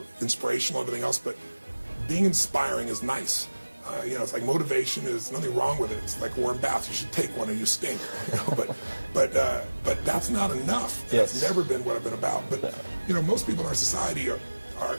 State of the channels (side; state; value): both; inverted; correlation -1.00